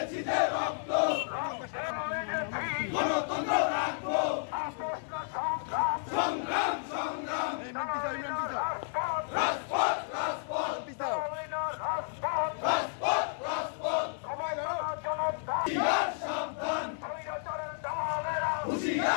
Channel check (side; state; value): right; silent; digital silence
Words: যে রক্ত, রক্তে লেগেছি, গণতন্ত্র রাখবো, আপোষ না সংগ্রাম, সংগ্রাম সংগ্রাম, চালাই না রাজপথ, রাজপথ রাজপথ, চালাই না রাজপথ, রাজপথ রাজপথ, সবাই জনতা, হুঁশিয়ার সাবধান, স্বৈরাচারের দালালেরা,